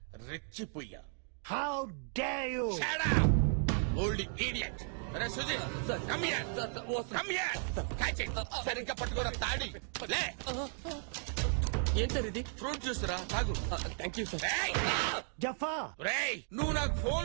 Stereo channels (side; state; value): left; silent; 54 dB below the other